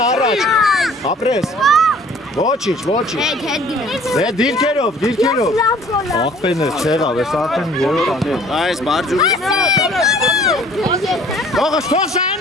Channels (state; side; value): normal; both; correlation 0.53